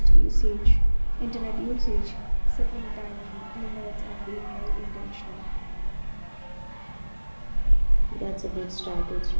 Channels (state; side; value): inverted; both; correlation -1.00